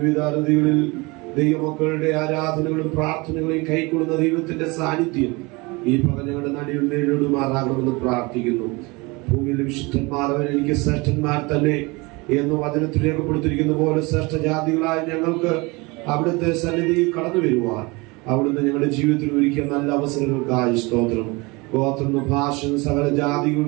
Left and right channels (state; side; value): quieter; left; 25.5 dB